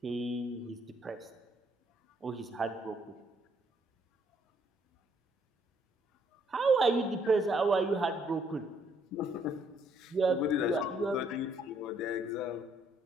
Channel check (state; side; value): normal; both; correlation 0.68